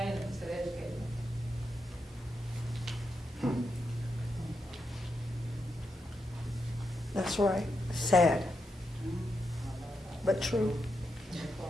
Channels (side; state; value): both; normal; correlation 0.84